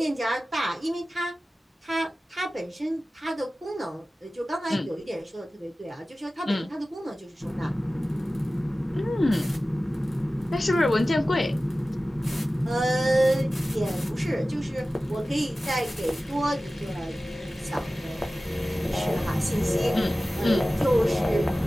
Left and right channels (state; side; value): normal; both; correlation 0.96